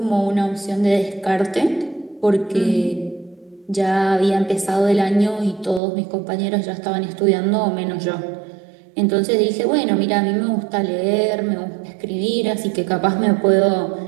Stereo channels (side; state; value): left; drops out; at 5.8 s